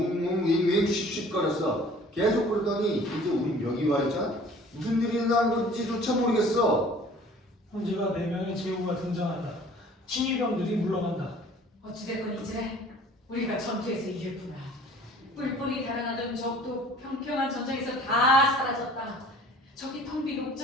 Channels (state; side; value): normal; both; correlation 0.50